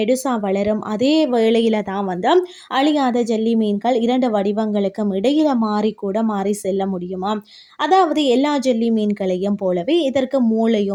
வளரும். அதே வேளையில தான் அழியாத ஜெல்லி மீன்கள் 2 வடிவங்களுக்கும் இடையில மாறி செல்ல முடியுமா. அதாவது எல்லா ஜெல்லி மீன்களையும் போலவே இதற்கு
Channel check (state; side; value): identical; both; correlation 1.00